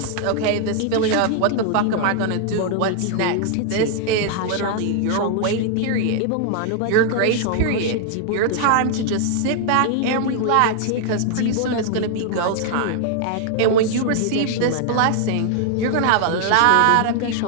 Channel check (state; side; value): different; both; correlation 0.00